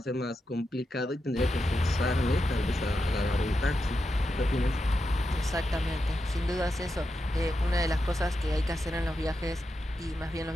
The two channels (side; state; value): both; normal; correlation 0.87